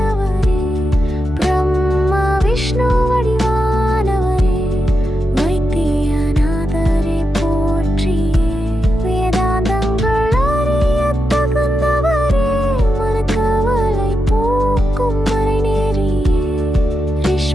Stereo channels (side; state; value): both; normal; correlation 0.87